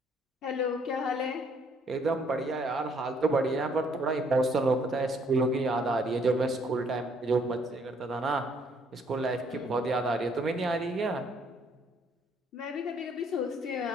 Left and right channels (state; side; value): normal; both; correlation 0.66